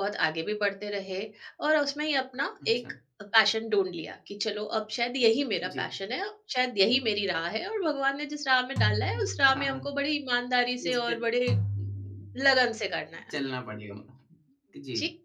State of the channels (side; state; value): both; identical; correlation 1.00